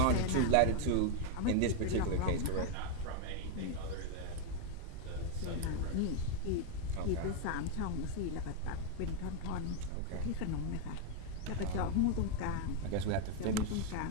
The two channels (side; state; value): both; different; correlation 0.00